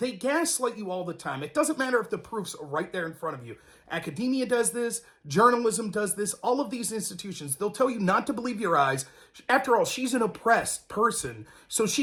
gaslight you all the time. It doesn't matter if the proof's right there in front of you. Academia does this, journalism does this, all of these institutions, they'll tell you not to believe your eyes. After all, she's an oppressed person, so she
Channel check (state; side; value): identical; both; correlation 1.00